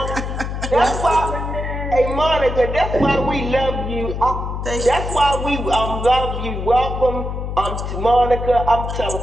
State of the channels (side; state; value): left; noise; hum, 4 dB below the sound